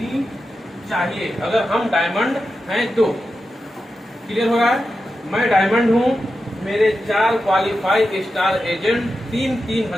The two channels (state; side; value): normal; both; correlation 0.90